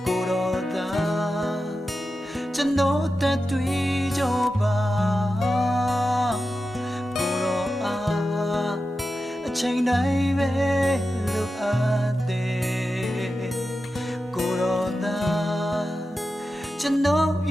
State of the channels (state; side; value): normal; both; correlation 0.92